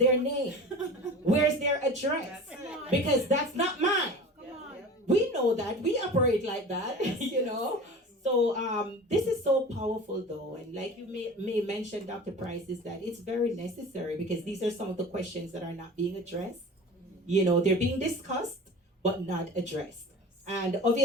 name? Where's their address? Because that's not mine. We know that. We operate like that. So this is so powerful though, and like you may mention, Dr. Price, is that it's very necessary, because these are some of the questions that are not being addressed. They're being discussed but not addressed. And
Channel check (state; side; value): normal; both; correlation 0.37